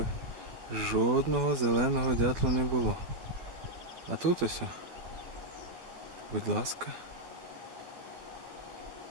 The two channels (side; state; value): left; late; 12 ms